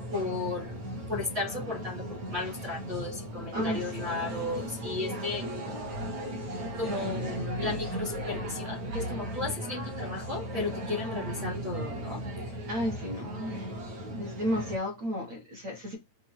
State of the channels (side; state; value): left; late; 8.8 ms